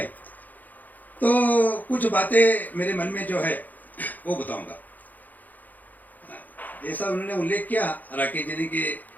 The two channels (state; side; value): late; right; 0.083 ms